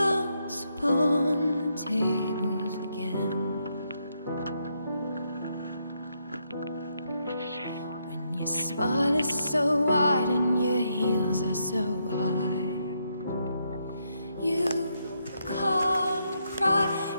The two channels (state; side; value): inverted; both; correlation -0.79